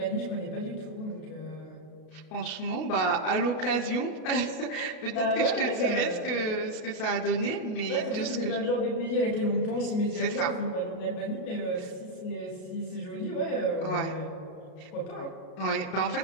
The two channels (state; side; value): late; right; 32 ms